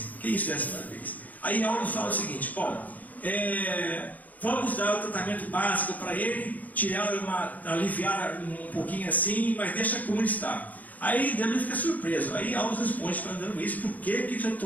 Que isso, 10ª vez? Aí Aulus fala o seguinte: bom, vamos dar o tratamento básico para ele, aliviar um pouquinho assim, mas deixa como está. Aí André fica surpreso. Aí Aulus responde para André Luiz por que está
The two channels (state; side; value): late; right; 0.078 ms